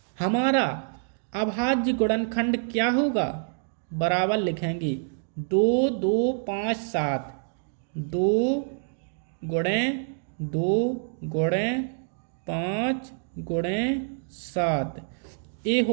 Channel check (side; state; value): left; silent; digital silence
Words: हमारा अभाज्य गुणनखंड क्या होगा? बराबर लिखेंगे 2 2 5 7। 2 गुणे 2 गुणे 5 गुणे 7। ये